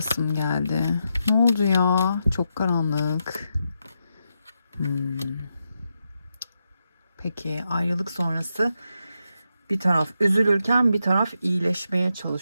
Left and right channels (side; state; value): both; inverted; correlation -0.85